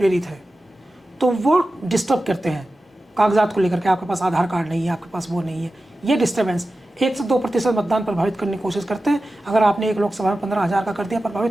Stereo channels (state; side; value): normal; both; correlation 0.94